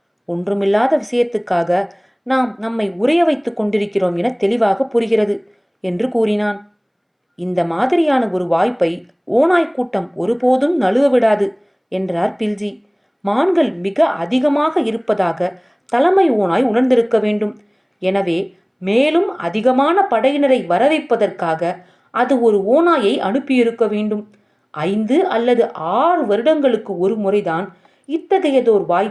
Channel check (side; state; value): both; identical; correlation 1.00